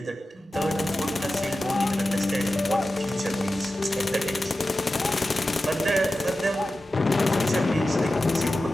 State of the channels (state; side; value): normal; both; correlation 0.94